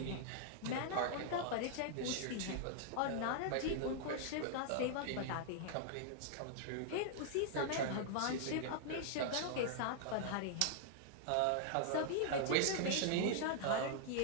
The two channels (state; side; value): different; both; correlation -0.01